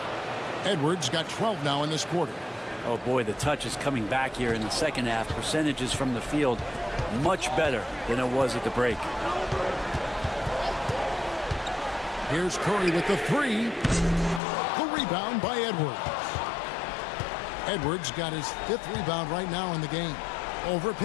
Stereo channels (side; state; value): right; drops out; at 14.4 s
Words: Edwards got 12 now in this quarter. Oh boy, the touch is coming back here in the second half. Percentages from the field much better than it was at the break. Here's Curry with the three. The rebound by Edwards. Edwards got his 5th rebound right now in the game. Over